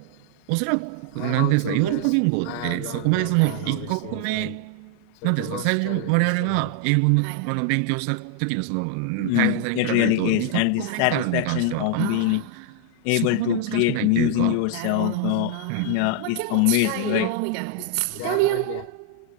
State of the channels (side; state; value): both; different; correlation 0.00